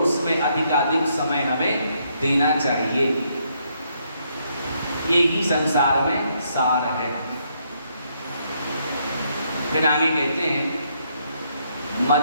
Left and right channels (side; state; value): both; inverted; correlation -0.73